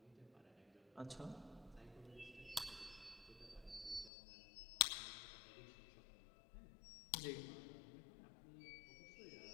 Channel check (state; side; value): drops out; right; at 4.1 s